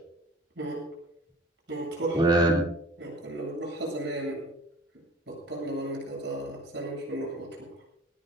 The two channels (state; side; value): normal; both; correlation 0.44